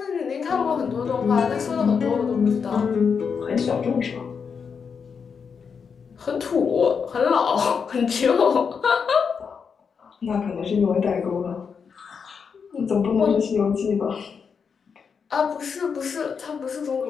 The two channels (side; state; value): right; quieter; 6.1 dB